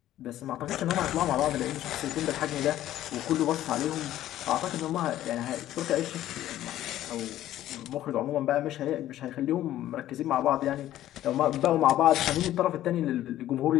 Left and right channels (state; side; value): quieter; right; 13.3 dB